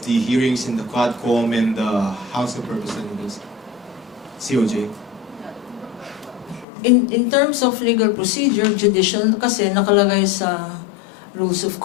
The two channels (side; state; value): right; drops out; at 6.7 s